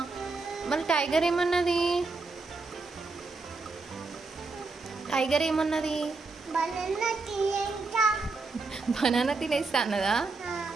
మరి టైగర్ ఏమన్నది? టైగర్ ఏమన్నది? బనానా తినేస్తా అన్నదా?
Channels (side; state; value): left; quieter; 3.9 dB